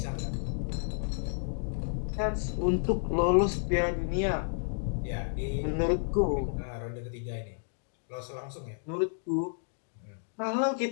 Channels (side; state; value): right; silent; digital silence